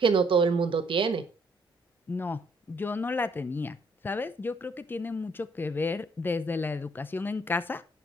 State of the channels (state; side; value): normal; both; correlation 0.67